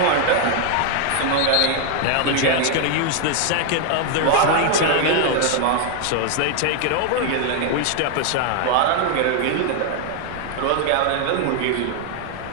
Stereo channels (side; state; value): both; different; correlation 0.00